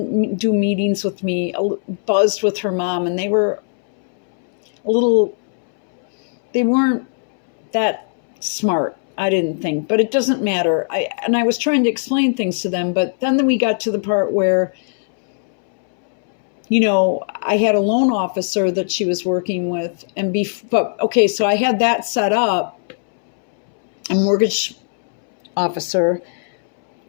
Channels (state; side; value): silent; right; 65 dB below the other